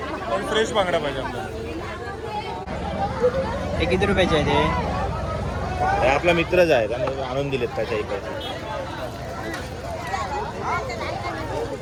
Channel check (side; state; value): both; identical; correlation 1.00